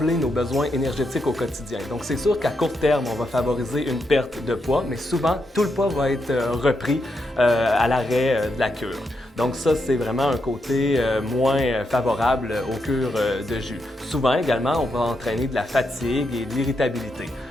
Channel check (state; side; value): normal; both; correlation 0.82